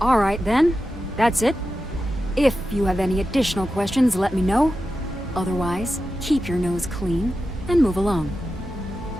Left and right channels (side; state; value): both; normal; correlation 0.91